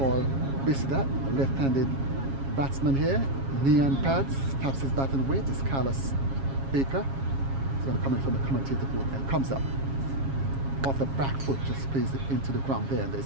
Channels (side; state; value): left; late; 7.3 ms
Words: Bishudat, a left-handed batsman here. Knee and pads, taps his batting weight. Is Carlos Baker. He's going to come in from the commentator booth and comes up. Off the back foot, just plays it into the ground there, and